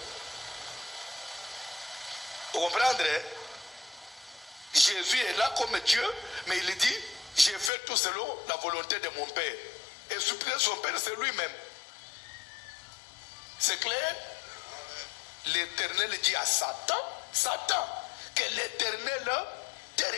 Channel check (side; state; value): right; drops out; at 7.7 s